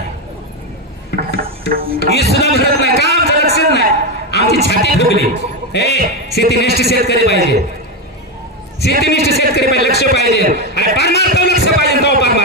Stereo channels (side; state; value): both; normal; correlation 0.10